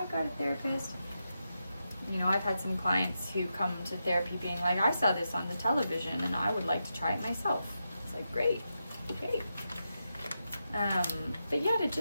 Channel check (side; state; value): both; inverted; correlation -0.88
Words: got a therapist. You know, I've had some clients who come to therapy being like, I saw this on the television and I would like to try it myself. It's like, great, okay. But yeah, to